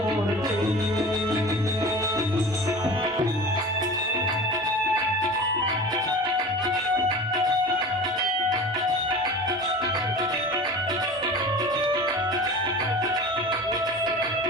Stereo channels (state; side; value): normal; both; correlation 0.36